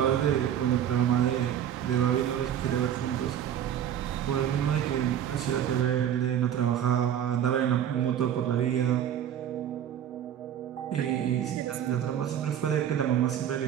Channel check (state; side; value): quieter; left; 10.0 dB